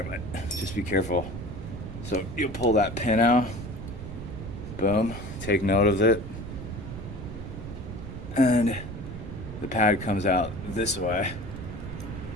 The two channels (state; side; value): noise; right; rumble, 9 dB below the sound